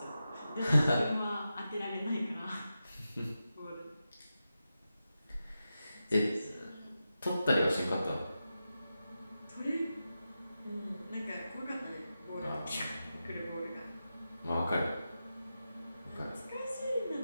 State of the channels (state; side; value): inverted; both; correlation -0.91